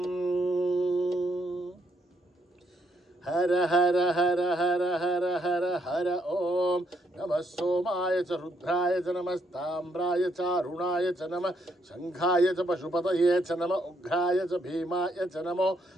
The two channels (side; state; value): both; normal; correlation 0.74